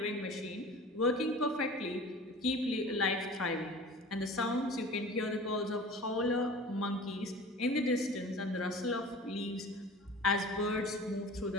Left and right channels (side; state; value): both; normal; correlation 0.40